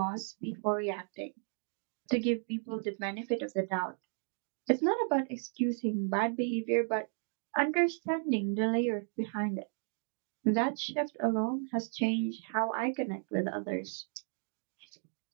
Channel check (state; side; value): silent; left; 55 dB below the other